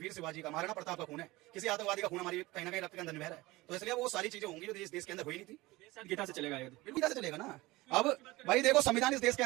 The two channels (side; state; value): left; quieter; 20.4 dB